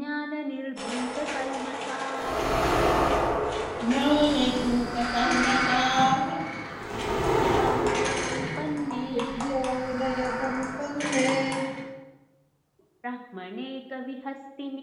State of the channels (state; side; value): identical; both; correlation 1.00